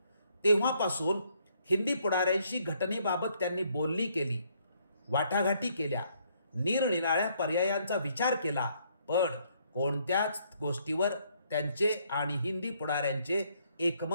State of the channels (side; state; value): both; inverted; correlation -0.69